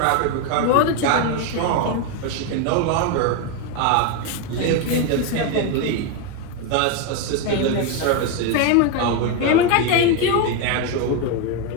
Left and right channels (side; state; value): both; different; correlation 0.02